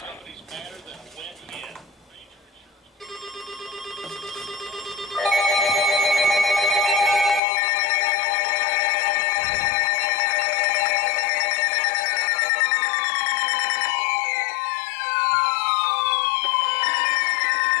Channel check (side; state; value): right; drops out; at 7.4 s